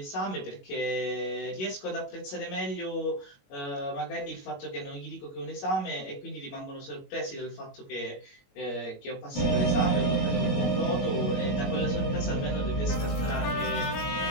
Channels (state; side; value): late; right; 21 ms